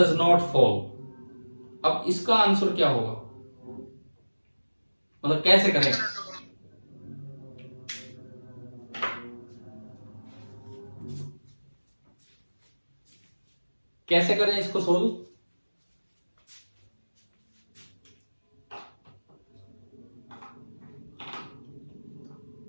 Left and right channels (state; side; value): inverted; both; correlation -1.00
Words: not fall? अब इसका आंसर क्या होगा, मतलब कैसे करें? कैसे करें इसको सोल्व?